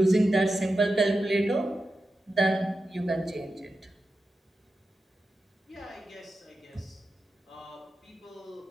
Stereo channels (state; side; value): normal; both; correlation 0.91